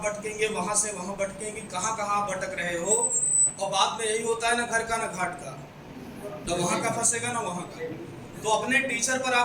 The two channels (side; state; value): both; identical; correlation 1.00